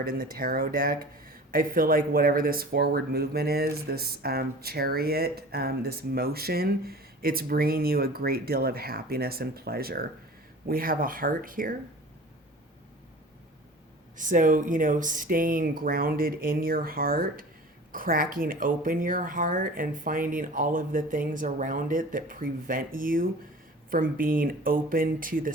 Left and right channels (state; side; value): normal; both; correlation 0.41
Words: in the tarot deck. I feel like whatever this forward movement is, this chariot, this motion, it's bringing you a great deal of happiness and pleasure. We have a heart here. So, staying grounded in your heart, cracking open your heart and finding all of the things around it that prevent you from being open to the